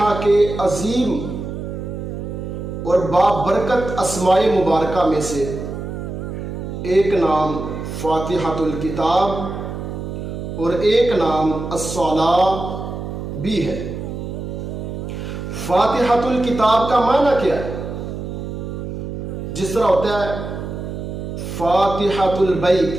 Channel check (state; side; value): noise; right; hum, 7 dB below the sound